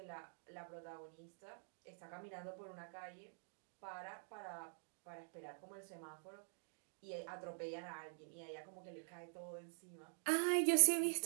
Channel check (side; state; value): left; silent; digital silence